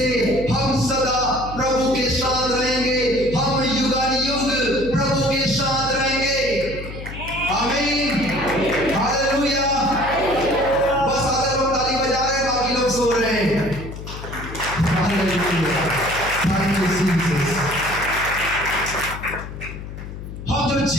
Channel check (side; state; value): left; noise; hum, 10 dB below the sound